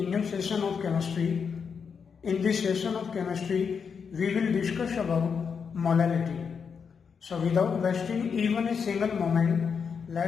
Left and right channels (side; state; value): right; quieter; 6.2 dB